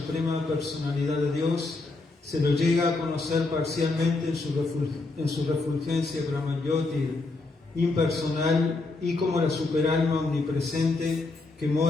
personalidad de Dios, se lo llega a conocer parcialmente en su refulgencia Brahmayoti, impersonal, y como la superalma omnipresente que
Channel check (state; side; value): quieter; right; 3.4 dB